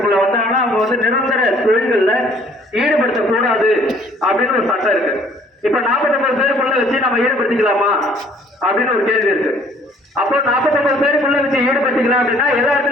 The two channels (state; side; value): normal; both; correlation 0.58